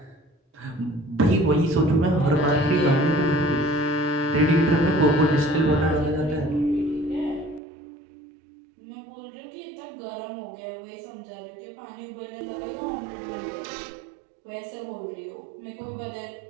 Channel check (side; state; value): left; drops out; at 7.6 s